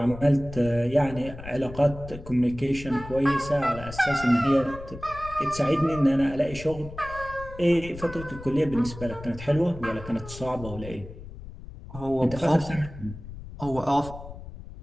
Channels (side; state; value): left; noise; rumble, 14 dB below the sound